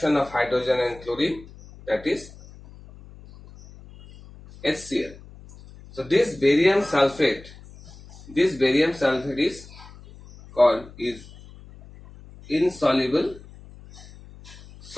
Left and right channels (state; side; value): noise; left; hum, 20 dB below the sound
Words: of hydrogen and chlorine, that is HCl. So this barium sulfate is called insoluble